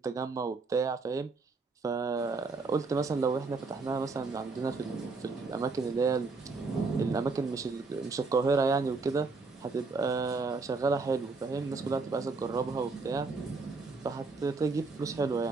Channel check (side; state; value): left; quieter; 4.0 dB